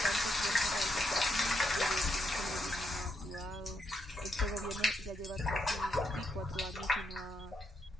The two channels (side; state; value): both; normal; correlation 0.80